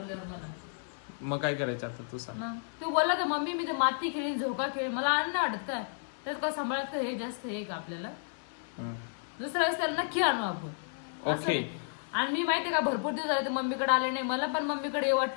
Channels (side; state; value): right; silent; 56 dB below the other